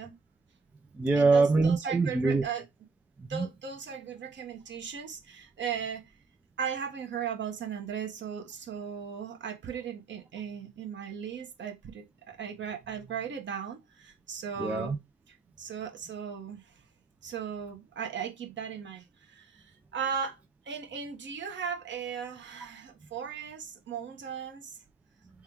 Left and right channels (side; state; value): left; quieter; 4.5 dB